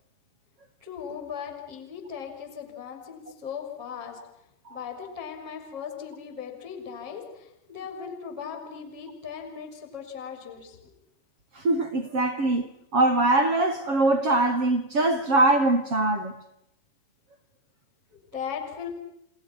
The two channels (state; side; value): late; left; 7.3 ms